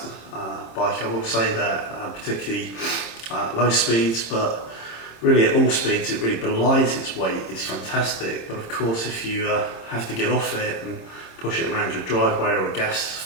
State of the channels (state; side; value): late; right; 26 ms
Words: bike, I will say that, particularly low speeds, but really at all speeds it really belies its weight. It's fantastic, but of course if you have to get off it and push it around your driveway or a gas